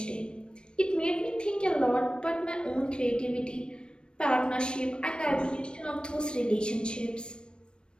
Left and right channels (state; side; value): late; right; 0.054 ms